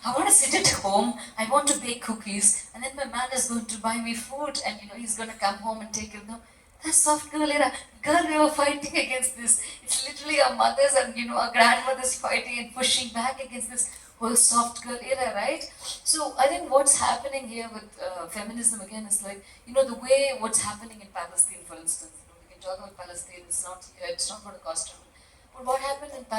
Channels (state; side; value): identical; both; correlation 1.00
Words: I want to sit at home, I want to bake cookies, and then my man is going to buy me food, and he's going to come home and take it. No, that's soft girl era. Girl, we were fighting against this. It's literally our mothers and our grandmothers fighting and pushing back against this whole soft girl era, right? So I think what's happening here with feminism again is like, the way what's happening in Palestine, for instance. We can talk about Palestine. It's not going to cost trouble. But what happened in